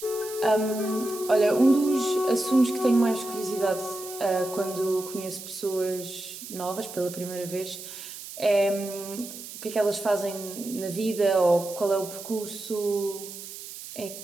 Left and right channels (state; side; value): noise; right; hiss, 12 dB below the sound